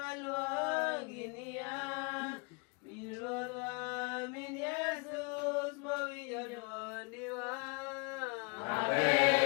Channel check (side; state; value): right; quieter; 31.7 dB